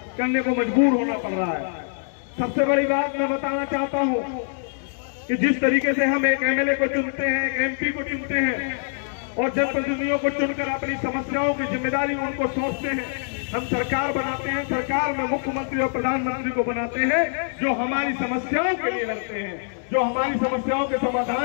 करने को मजबूर होना पड़ रहा है। सबसे बड़ी बात मैं बताना चाहता हूँ कि जिस तरीके से हम एक एमएलए को चुनते हैं, एक एमपी को चुनते हैं और जनप्रतिनिधियों को चुनकर अपनी समस्याओं की जिम्मेदारी उनको सौंपते हैं, हम सरकार बनाते हैं, सरकार में मुख्यमंत्री और प्रधानमंत्री को बनाते हैं जो हमारी समस्याओं के लिए लड़ते हैं, जो हमारी समस्याओं के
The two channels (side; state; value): right; silent; digital silence